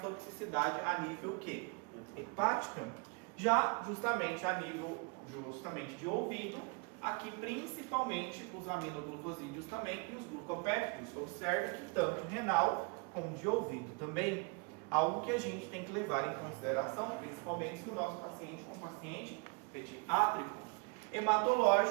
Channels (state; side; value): quieter; left; 32.2 dB